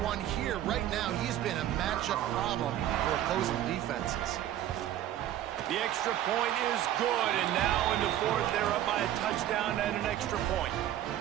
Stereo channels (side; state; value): left; quieter; 12.3 dB